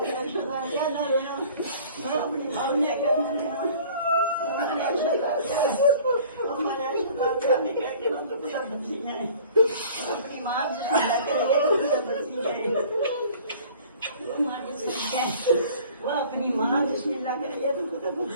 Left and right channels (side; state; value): both; inverted; correlation -0.49